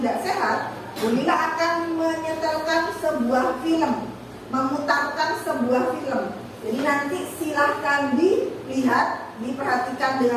sehat, Ulila akan menyetelkan sebuah film, memutarkan sebuah film. Jadi nanti silahkan dilihat, diperhatikan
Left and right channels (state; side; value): identical; both; correlation 1.00